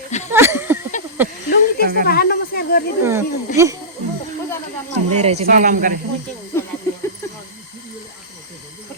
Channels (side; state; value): both; normal; correlation -0.18